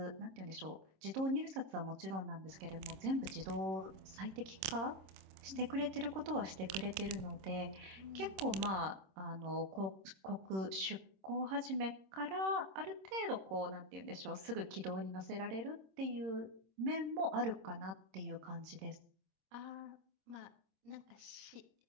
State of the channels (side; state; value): left; late; 26 ms